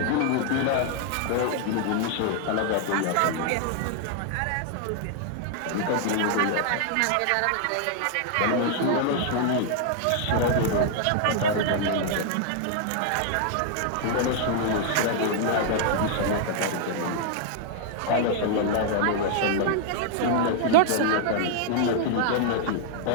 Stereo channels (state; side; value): different; both; correlation 0.00